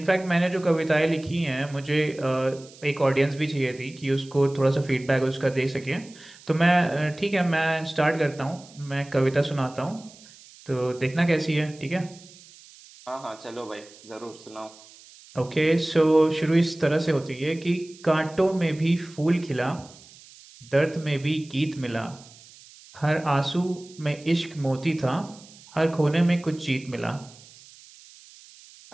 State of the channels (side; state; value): right; noise; hiss, 22 dB below the sound